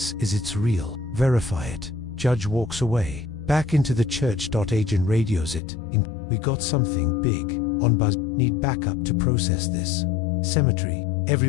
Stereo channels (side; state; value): right; drops out; at 5.6 s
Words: is it's real. Verify it. Judge walks away, back into the church. Agent radios it. We got something big on Buzz. Need backup to process this. Cemetery.